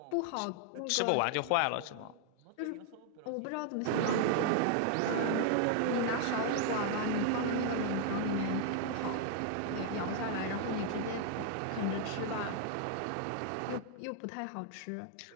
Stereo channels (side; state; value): both; different; correlation 0.00